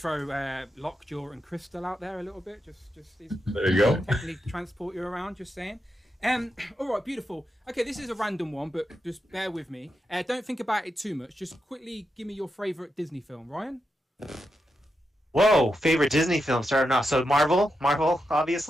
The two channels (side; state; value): both; normal; correlation 0.86